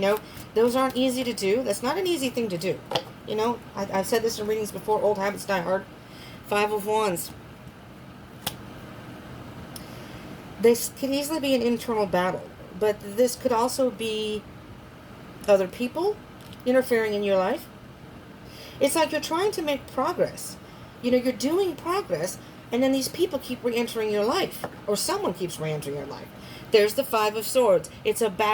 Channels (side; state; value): both; identical; correlation 1.00